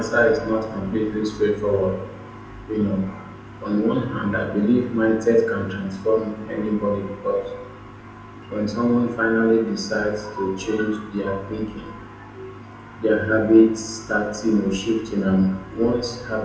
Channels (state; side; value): identical; both; correlation 1.00